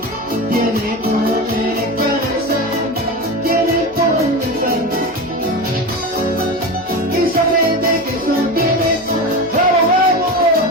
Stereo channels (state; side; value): noise; left; hum, 26 dB below the sound